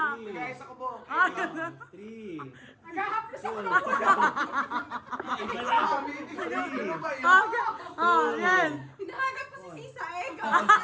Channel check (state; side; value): identical; both; correlation 1.00